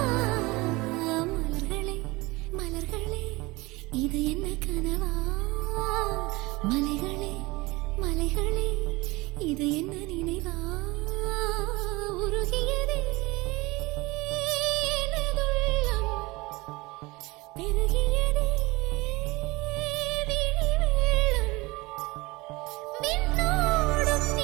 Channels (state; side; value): quieter; left; 22.8 dB